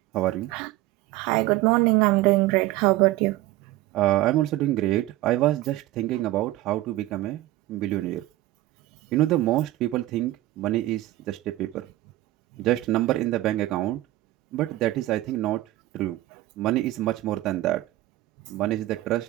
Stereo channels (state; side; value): quieter; left; 16.6 dB